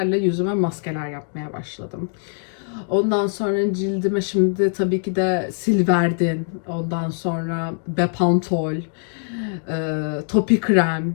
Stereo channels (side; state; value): right; silent; 64 dB below the other